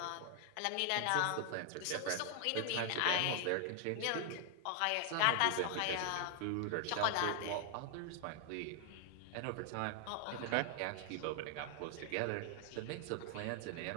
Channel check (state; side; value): different; both; correlation 0.00